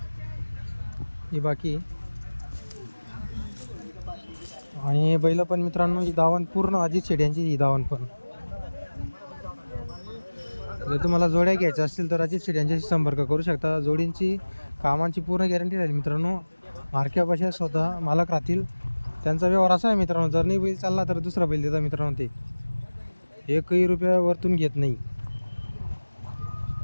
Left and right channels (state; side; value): inverted; both; correlation -1.00